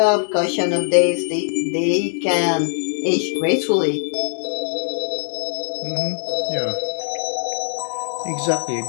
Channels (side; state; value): right; silent; digital silence